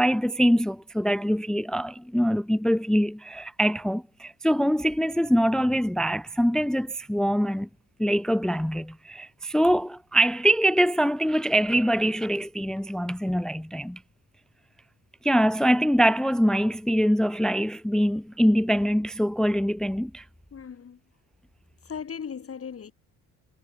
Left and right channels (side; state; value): both; normal; correlation 0.96